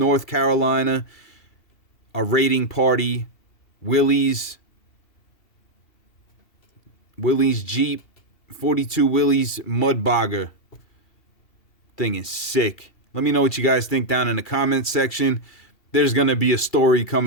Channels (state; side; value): late; right; 2.7 ms